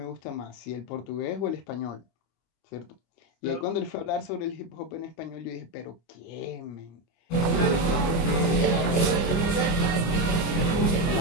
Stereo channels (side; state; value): right; late; 25 ms